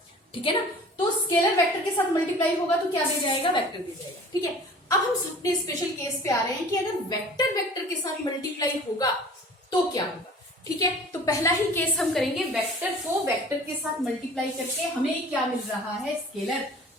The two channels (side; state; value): both; normal; correlation 0.45